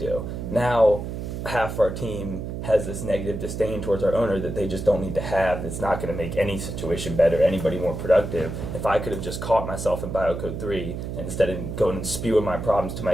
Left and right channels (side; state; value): right; noise; hum, 6 dB below the sound